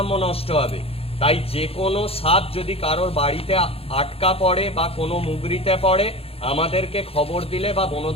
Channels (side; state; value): right; late; 0.28 ms